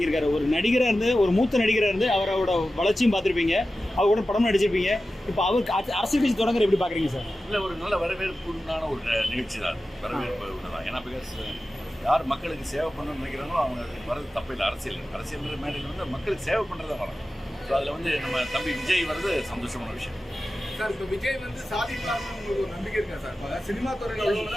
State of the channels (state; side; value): normal; both; correlation 0.94